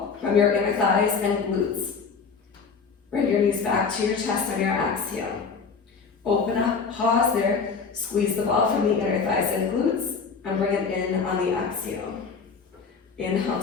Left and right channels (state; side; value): quieter; right; 5.3 dB